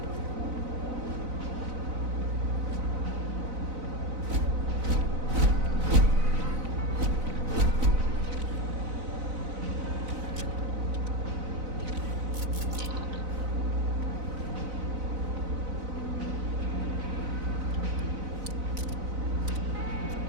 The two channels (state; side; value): late; left; 4.0 ms